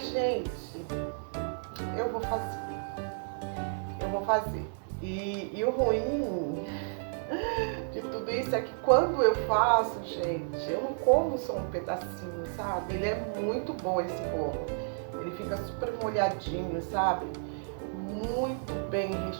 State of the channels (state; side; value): silent; left; 57 dB below the other